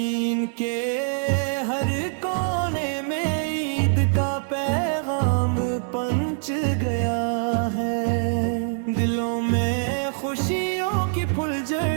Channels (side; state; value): left; silent; digital silence